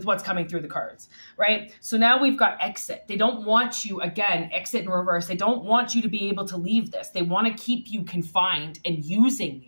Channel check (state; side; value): inverted; both; correlation -1.00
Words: what's coming through the cards, right? So now we've got exit. They don't want you, again, exit in reverse. They don't want you to be able to leave this. They want to keep you confined and using